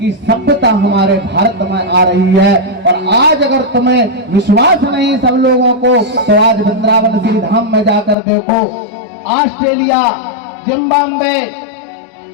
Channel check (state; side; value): drops out; right; at 8.2 s